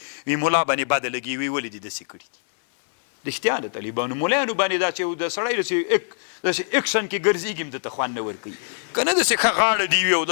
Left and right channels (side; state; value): right; silent; 63 dB below the other